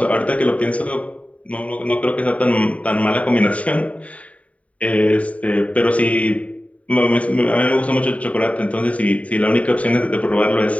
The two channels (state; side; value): late; right; 0.067 ms